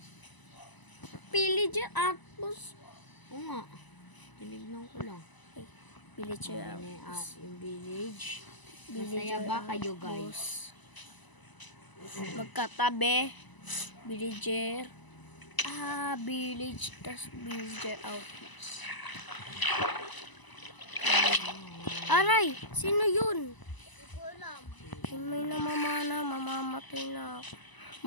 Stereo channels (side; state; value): right; late; 1.0 ms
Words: Pillager Outpost. Oo nga. Tinignan ko lang. Pillager Ayun, Outpost. yung village. Villager Masaya ba kayo, Outpost. guys? Magkatabi. Villager. Village. Tas Villager Outpost. Aray! Sino yun? Hindi ko alam. May namamana. Mamamatay na ako.